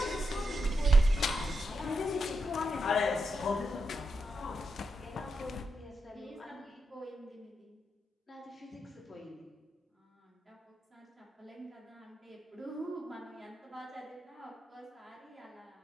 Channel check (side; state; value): both; normal; correlation 0.85